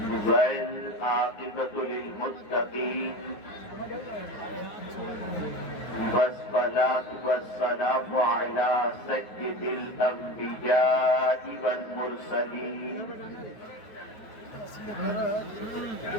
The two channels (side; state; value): right; late; 9.4 ms